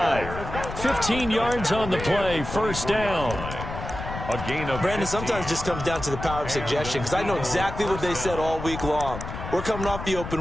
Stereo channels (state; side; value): noise; left; rumble, 8 dB below the sound